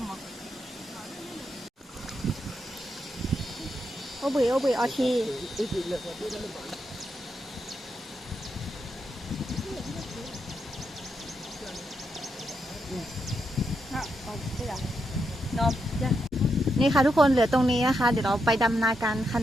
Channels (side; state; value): both; normal; correlation 0.83